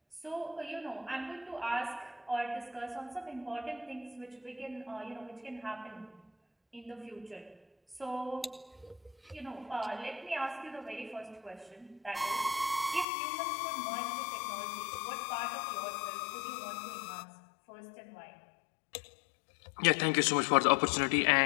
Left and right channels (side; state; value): right; drops out; at 13.1 s